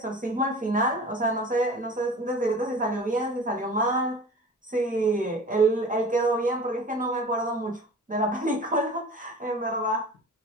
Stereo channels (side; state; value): both; normal; correlation 0.39